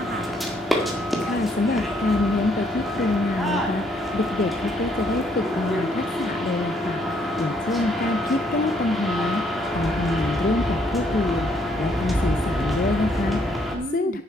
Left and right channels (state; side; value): normal; both; correlation 0.69